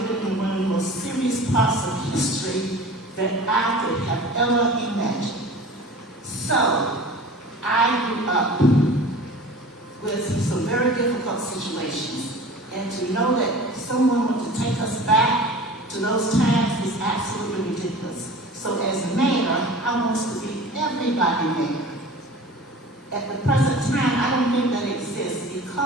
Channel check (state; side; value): normal; both; correlation 0.40